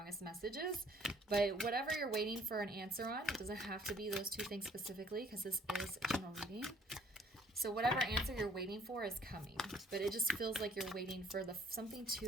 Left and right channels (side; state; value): both; normal; correlation 0.60